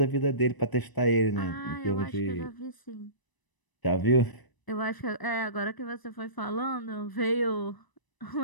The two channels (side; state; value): right; late; 1.0 ms